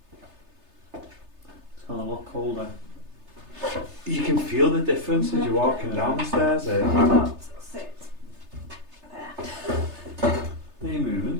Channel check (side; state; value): left; late; 3.3 ms